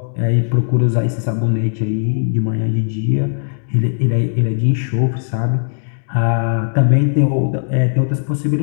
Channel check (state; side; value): silent; right; digital silence